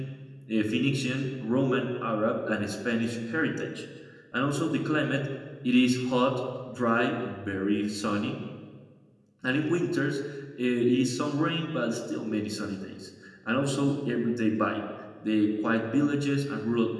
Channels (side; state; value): both; identical; correlation 1.00